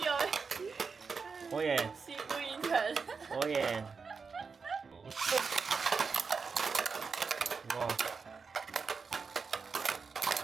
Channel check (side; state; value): left; quieter; 5.1 dB